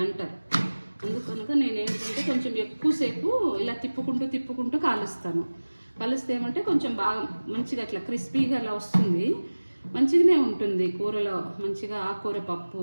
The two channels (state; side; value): inverted; both; correlation -1.00